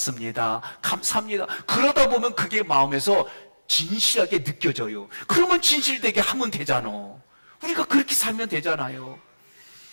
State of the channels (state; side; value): inverted; both; correlation -1.00